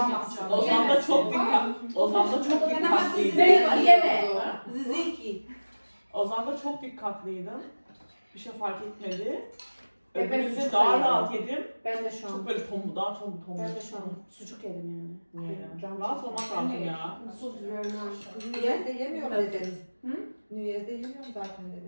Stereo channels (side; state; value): both; inverted; correlation -1.00